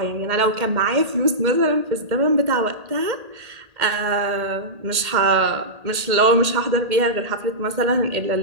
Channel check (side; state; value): left; late; 1.8 ms